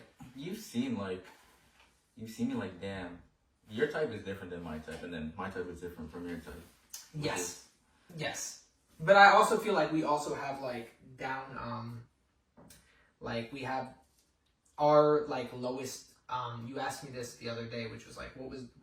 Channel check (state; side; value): identical; both; correlation 1.00